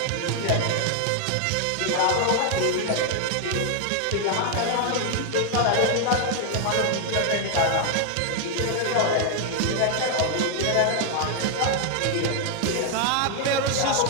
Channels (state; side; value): different; both; correlation 0.00